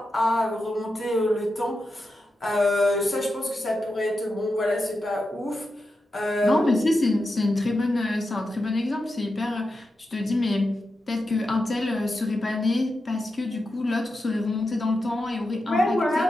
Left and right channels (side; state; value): both; normal; correlation 0.89